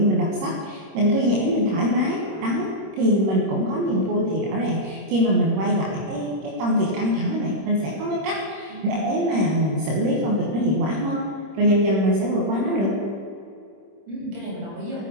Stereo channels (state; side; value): late; left; 25 ms